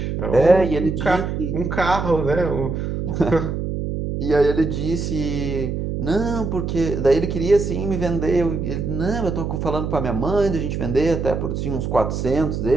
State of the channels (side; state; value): right; noise; hum, 3 dB below the sound